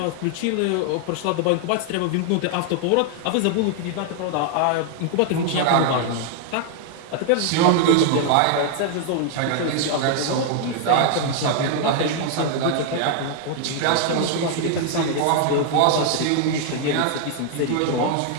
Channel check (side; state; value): both; different; correlation 0.00